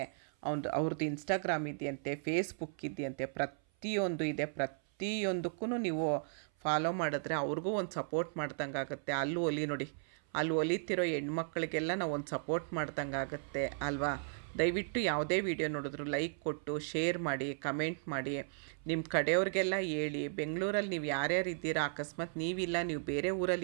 ಅವ್ರದ್ದು ಇನ್ಸ್ಟಾಗ್ರಾಮ್ ಇದೆಯಂತೆ, ಫೇಸ್ಬುಕ್ ಇದೆಯಂತೆ, ಪ್ರತಿಯೊಂದು ಇದೆ. ಪ್ರತಿಯೊಂದಕ್ಕೂ ನೀವು ಫಾಲೋ ಮಾಡಿದ್ರೆ ಅವ್ರಿಗೂ ಒಂದು ಸಪೋರ್ಟ್ ಮಾಡ್ದಂಗೆ ಆಗುತ್ತೆ. ಅಲ್ಲಿ ಹೊಲಿ ನೋಡಿ, ಅಲ್ಲಿ ಹೊಲಿತಿರೋ ಹೆಣ್ಮಕ್ಳಿಗೆಲ್ಲ ನಾವು ಒಂದು ಸಪೋರ್ಟ್ ಮಾಡ್ದಂಗೆ ಆಗುತ್ತೆ ಅಲ್ವಾ. ದಯವಿಟ್ಟು ಯಾವುದೇ ವಿಡಿಯೋ ನೋಡಿದ್ರು ಲೈಕ್ ಕೊಟ್ಟು ಶೇರ್ ಮಾಡಿ, ಕಮೆಂಟ್ ಮಾಡಿ, ನಿಮ್ಮ ಕಡೆಯವ್ರಿಗೆಲ್ಲ ಹೇಳಿ. ಬೆಂಗಳೂರಲ್ಲಿ ನೀವು ಯಾರ್ಯಾರು ಇದ್ದೀರಾ, ಅಕಸ್ಮಾತ್ ನೀವಿಲ್ಲ ನೀವು ಬೇರೆ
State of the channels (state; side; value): silent; left; 54 dB below the other